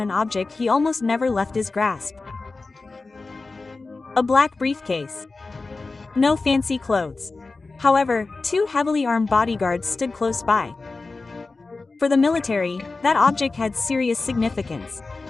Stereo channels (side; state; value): right; quieter; 3.7 dB